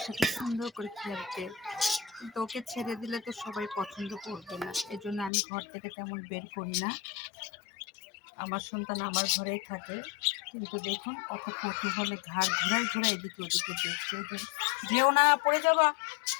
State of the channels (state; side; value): drops out; right; at 5.3 s